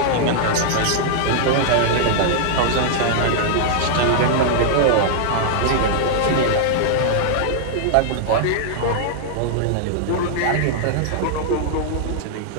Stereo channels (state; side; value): different; both; correlation -0.01